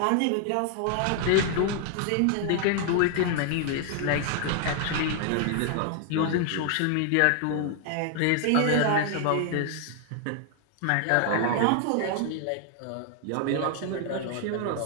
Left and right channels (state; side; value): different; both; correlation 0.00